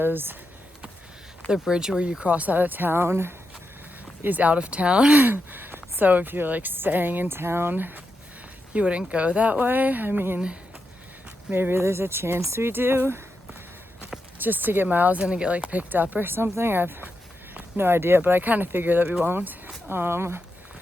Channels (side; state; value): both; normal; correlation 0.86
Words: the bridge where you cross out of town is out of town. So if you're like staying in town, you wouldn't go that way. I mean, maybe there's a chance we do, just to get miles in and get like picked up or something. I have no idea, but I kind of figure that we won't.